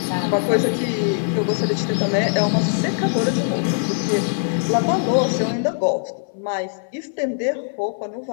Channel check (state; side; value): silent; right; 57 dB below the other